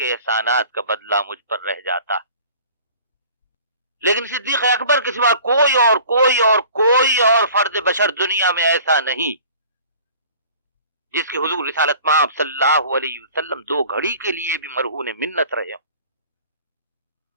احسانات کا بدلہ مجھ پر رہ جاتا ہے، لیکن صدیق اکبر کے سوا کوئی اور فرد بشر دنیا میں ایسا نہیں جس کے حضور رسالت مآب صلی اللہ علیہ وسلم 2 گھڑی کے لیے بھی مرہون منت رہے ہوں۔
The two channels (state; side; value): inverted; both; correlation -0.47